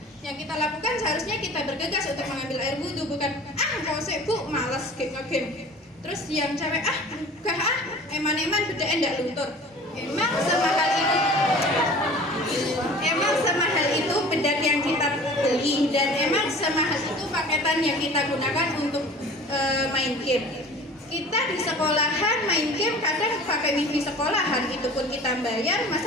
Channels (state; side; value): normal; both; correlation 0.43